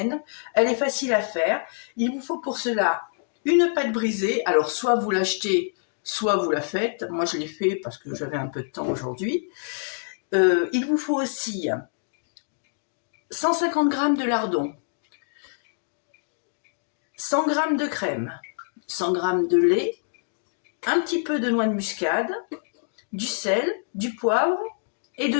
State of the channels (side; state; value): right; silent; digital silence